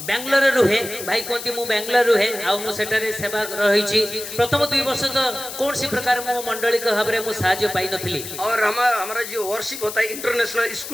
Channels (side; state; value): left; noise; hiss, 9 dB below the sound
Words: बेंगलोर रुहे भाई कहती मु बेंगलोर रुहे आउ सेटारे सेवा रही प्रथम 2 वर्ष तो कौन सी प्रकार मो मंडली के भाव में साहाय्य पाई नथली। और हमारा जो वर्शिप होता है इंटरनेशनल